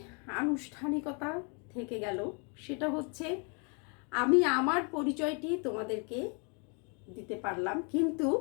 আনুষ্ঠানিকতা থেকে গেল, সেটা হচ্ছে আমি আমার পরিচয়টি তোমাদেরকে দিতে পারলাম, কিন্তু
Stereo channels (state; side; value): quieter; right; 36.4 dB